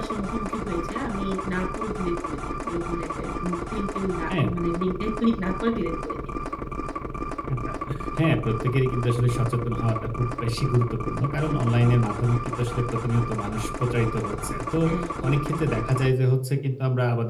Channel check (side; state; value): both; identical; correlation 1.00